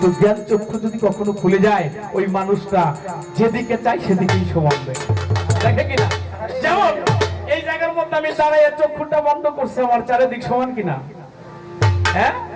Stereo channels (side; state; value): both; identical; correlation 1.00